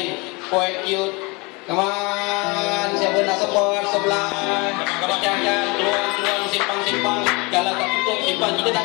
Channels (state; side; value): quieter; right; 27.5 dB